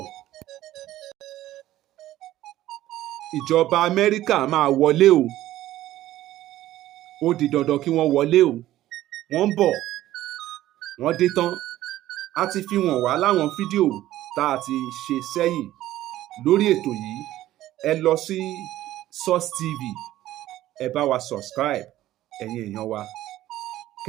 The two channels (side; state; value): left; quieter; 14.4 dB